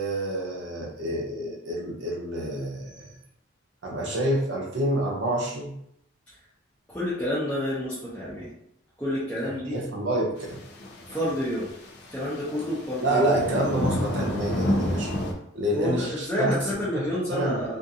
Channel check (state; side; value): normal; both; correlation 0.43